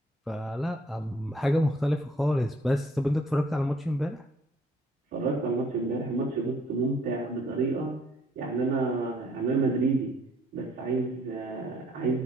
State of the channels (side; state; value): both; normal; correlation 0.63